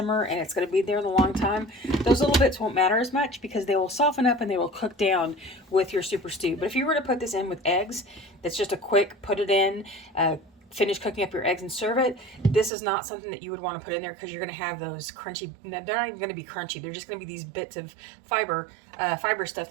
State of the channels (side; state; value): left; drops out; at 12.7 s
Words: and it's going to be there a long time, those little bits won't matter as much because they will soften up and they will cook down with your soup or stew. But if you were to put this in with eggs, that's just a quick put it in, finish cooking up your eggs and serve it, this is not something that you would want to put in there because you're going to have those crunchy, they're not even going to be crunchy, they're just going to be these bits of fiber stuff